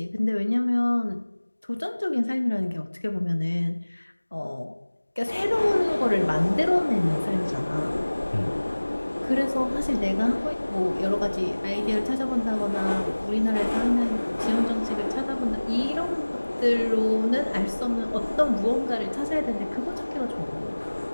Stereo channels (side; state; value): both; inverted; correlation -1.00